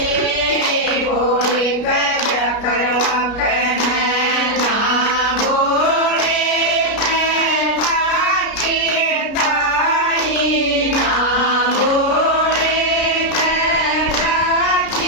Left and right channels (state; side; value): late; right; 33 ms